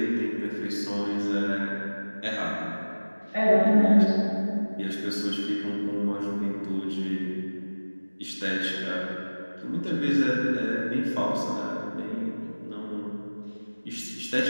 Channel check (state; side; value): inverted; both; correlation -1.00